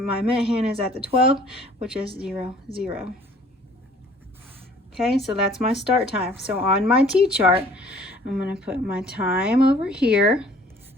minute hand is at the 12, which is 0, 0. Okay, so that's my start time. So on my T-chart, I'm going to put my time over here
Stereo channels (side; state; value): both; normal; correlation 0.54